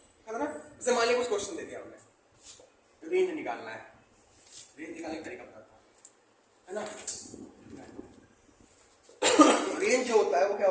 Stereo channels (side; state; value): both; identical; correlation 1.00